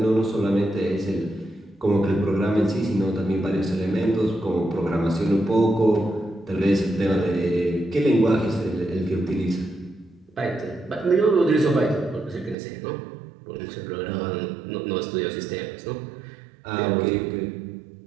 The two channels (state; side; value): drops out; left; at 12.6 s